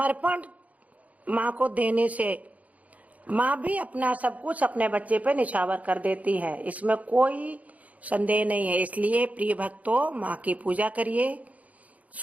माँ को देने से माँ भी अपना सब कुछ अपने बच्चे पे निछावर कर देती है, इसमें कोई संदेह नहीं है। इसलिए प्रिय भक्तों, माँ की पूजा करिए,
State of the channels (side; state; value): left; late; 0.071 ms